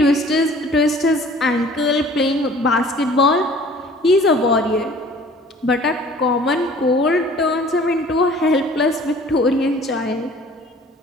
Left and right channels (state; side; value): normal; both; correlation 0.50